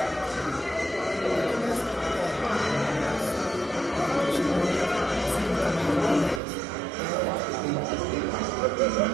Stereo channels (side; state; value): left; drops out; at 6.4 s